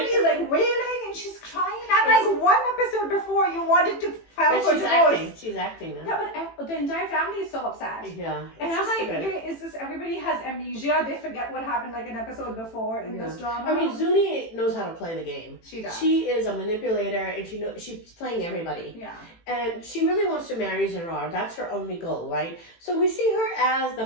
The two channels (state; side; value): late; right; 18 ms